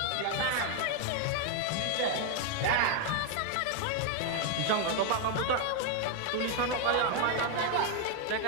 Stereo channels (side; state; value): both; different; correlation 0.00